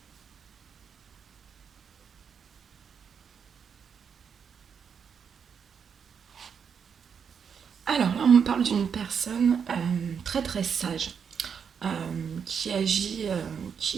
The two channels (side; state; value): left; quieter; 6.9 dB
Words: Alors là, on me parle d'une personne très très sage, qui